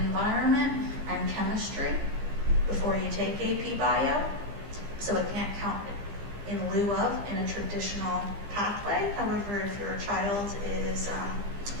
and Chemistry before you take AP Bio, so it can't count in lieu of in a traditional pathway. However, if your child is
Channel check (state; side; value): late; left; 15 ms